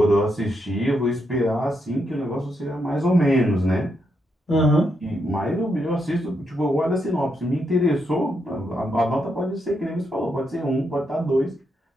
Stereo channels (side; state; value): both; normal; correlation 0.81